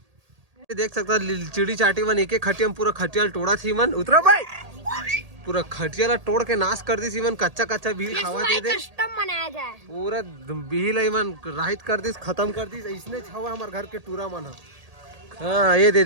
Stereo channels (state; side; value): late; left; 1.8 ms